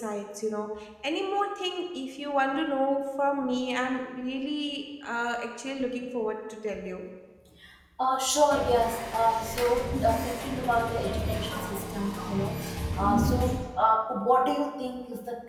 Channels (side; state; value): both; identical; correlation 1.00